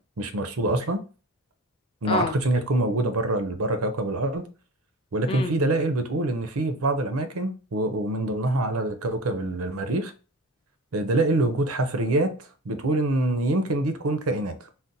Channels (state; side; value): normal; both; correlation 0.35